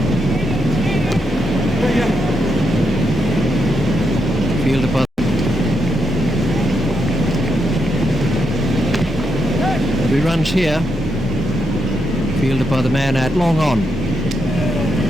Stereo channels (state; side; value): normal; both; correlation 0.82